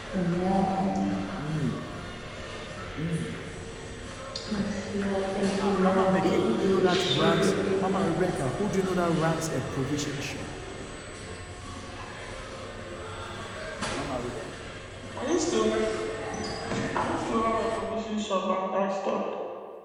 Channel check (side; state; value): both; identical; correlation 1.00